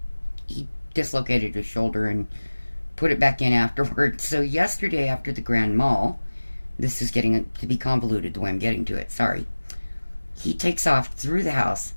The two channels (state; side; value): inverted; both; correlation -1.00